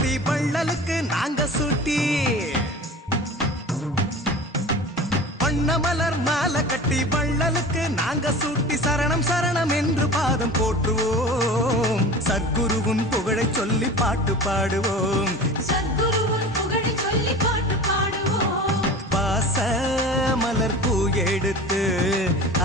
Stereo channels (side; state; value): both; normal; correlation 0.36